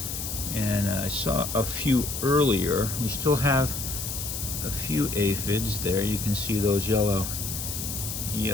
and I saw a few earlier. We still have a few aphids there. You can see those yellow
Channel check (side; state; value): left; noise; hiss, 5 dB below the sound